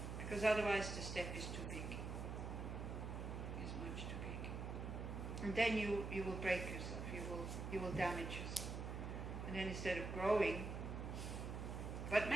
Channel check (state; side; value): noise; right; hum, 4 dB below the sound